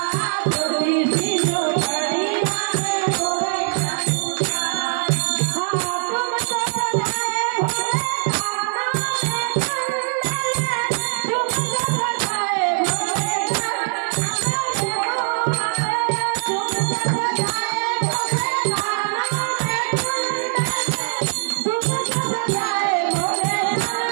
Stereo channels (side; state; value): left; silent; 63 dB below the other